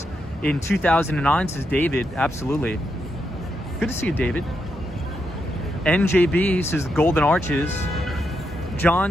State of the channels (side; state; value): both; normal; correlation 0.82